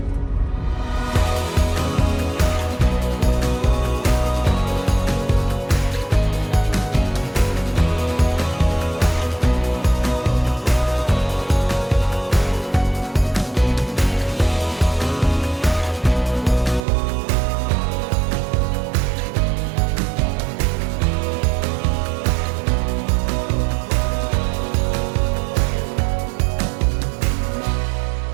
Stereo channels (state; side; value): drops out; left; at 16.8 s